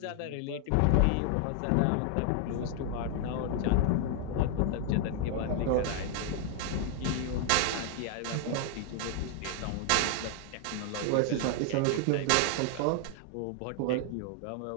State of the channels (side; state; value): both; different; correlation 0.00